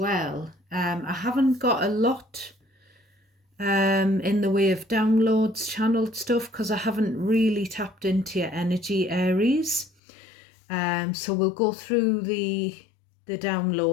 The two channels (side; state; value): right; drops out; at 9.9 s